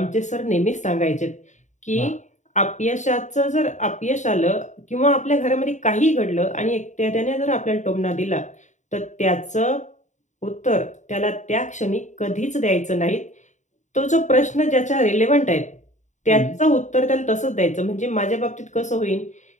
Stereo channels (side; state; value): right; late; 0.35 ms